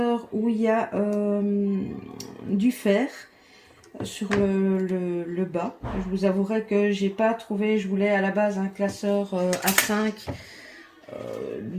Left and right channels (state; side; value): identical; both; correlation 1.00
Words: où il y a du fer sur le bas. Je vous avouerai que j'ai pas trouvé, je voulais à la base un classeur A5